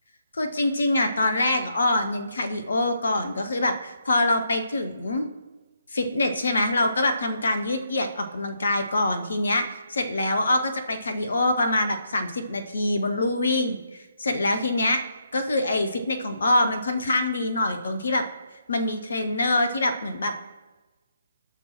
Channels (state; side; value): inverted; both; correlation -0.77